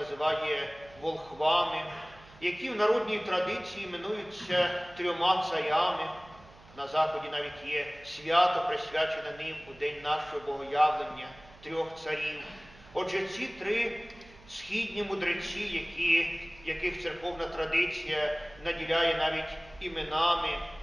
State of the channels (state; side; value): noise; right; hum, 23 dB below the sound